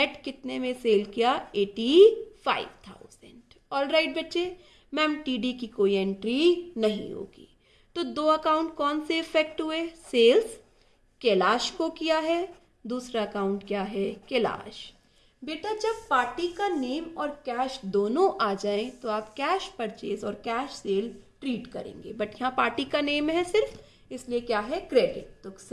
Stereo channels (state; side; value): identical; both; correlation 1.00